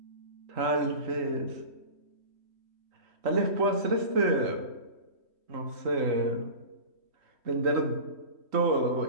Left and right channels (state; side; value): late; left; 3.1 ms